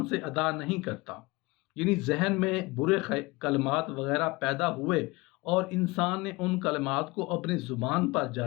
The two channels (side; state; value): right; quieter; 23.4 dB